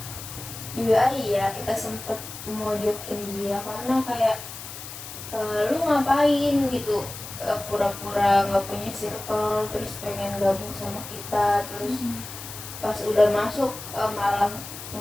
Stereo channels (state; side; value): noise; left; hiss, 11 dB below the sound